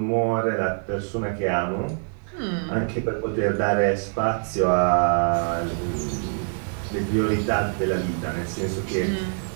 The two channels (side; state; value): left; silent; 62 dB below the other